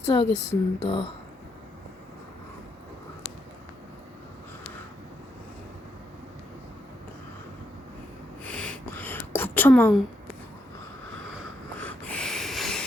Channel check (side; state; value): both; normal; correlation 0.78